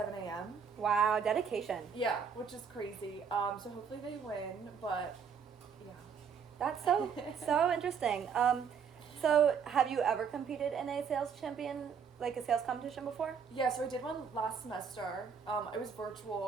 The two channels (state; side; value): quieter; left; 6.7 dB